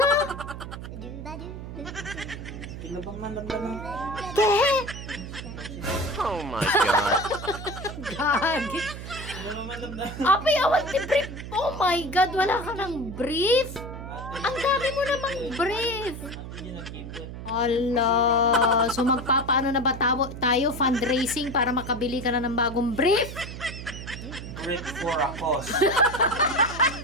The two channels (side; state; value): right; noise; hum, 10 dB below the sound